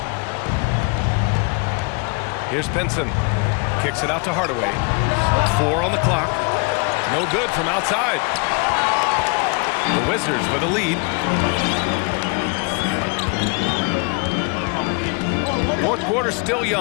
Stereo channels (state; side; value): quieter; right; 32.7 dB